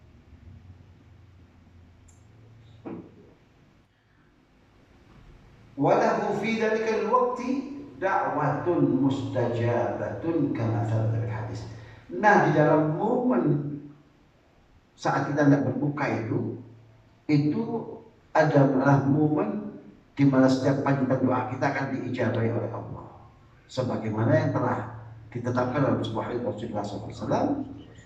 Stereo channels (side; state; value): both; identical; correlation 1.00